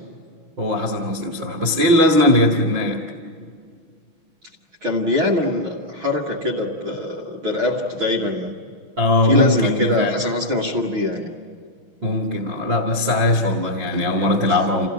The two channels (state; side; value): late; left; 6.1 ms